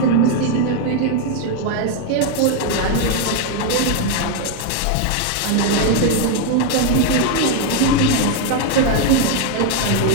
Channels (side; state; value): both; different; correlation 0.01